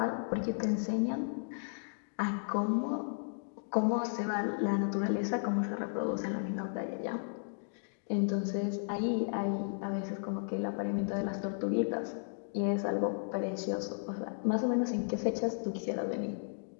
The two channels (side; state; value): right; silent; digital silence